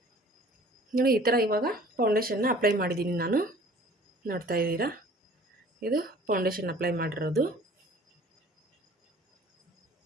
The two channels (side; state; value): both; normal; correlation 0.49